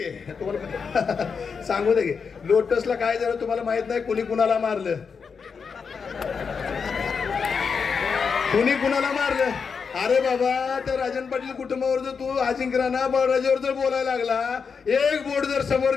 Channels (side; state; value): right; quieter; 5.8 dB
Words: तुम्हाला सांगू दे की लोटसला काय झालं तुम्हाला माहित नाही कुणी कुणाला मारलं कुणी कुणाला मारलं. अरे बाबा त्या राजन पाटील कुटुंबावर जर तू अजिंक्य राणा बळराजावर जर बोलायला लागला एक बोट जर समोर